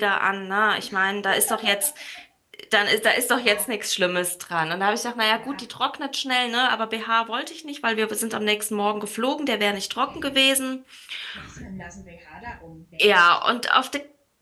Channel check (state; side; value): identical; both; correlation 1.00